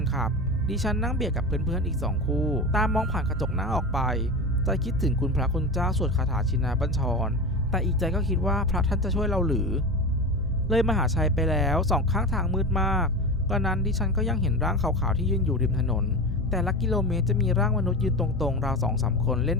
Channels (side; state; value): both; normal; correlation 0.25